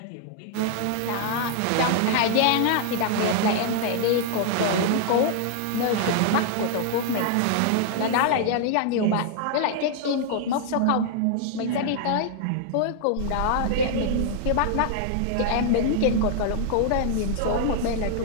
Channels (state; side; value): different; both; correlation 0.00